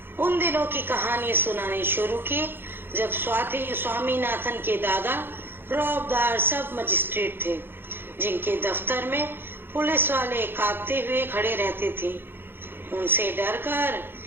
उन दिनों की कहानी सुनानी शुरू की जब स्वामीनाथन के दादा रौबदार सब मजिस्ट्रेट थे, जिनके दफ्तर में पुलिस वाले कांपते हुए खड़े रहते थे। उनसे डरकर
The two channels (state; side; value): late; left; 0.10 ms